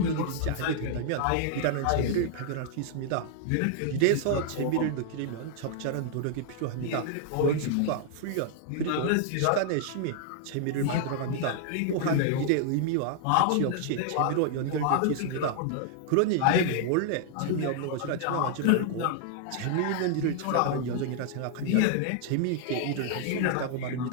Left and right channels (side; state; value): both; different; correlation -0.01